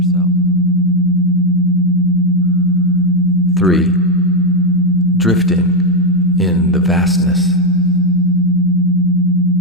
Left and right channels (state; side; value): normal; both; correlation 0.04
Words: 3, drifting in the vastness.